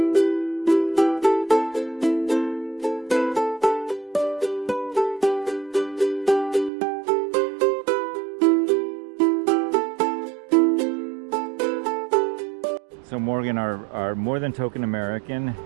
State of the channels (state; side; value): drops out; left; at 6.7 s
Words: So Morgan, our more than token American,